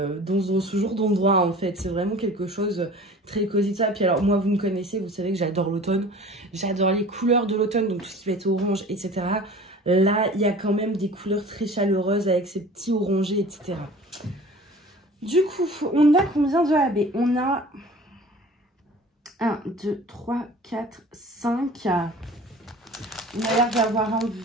ce genre d'endroit en fait. C'est vraiment quelque chose très cosy de ça. Puis alors moi vous me connaissez, vous savez que j'adore l'automne. J'adore les couleurs de l'automne, donc tout ce qui va être orange, etc. Là, il y a quand même des couleurs très chaleureuses avec ces petits orangés, etc. Du coup, on a combien de AB? On a 1, 2, 3, 4, 5. On a l'air d'avoir un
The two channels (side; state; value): both; normal; correlation 0.43